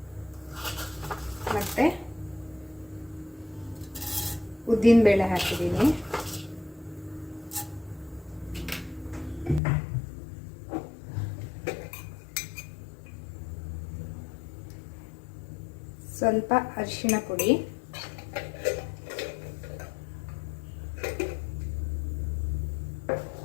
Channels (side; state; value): right; drops out; at 9.6 s